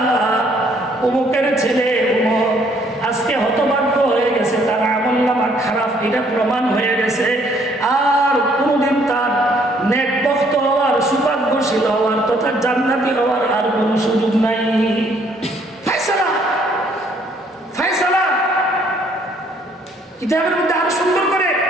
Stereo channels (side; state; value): both; normal; correlation 0.65